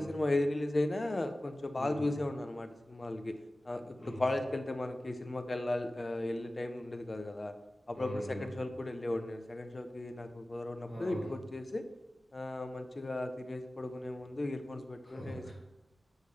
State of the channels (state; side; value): normal; both; correlation 0.96